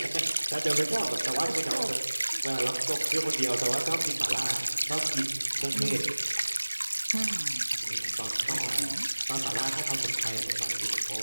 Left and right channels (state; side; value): inverted; both; correlation -1.00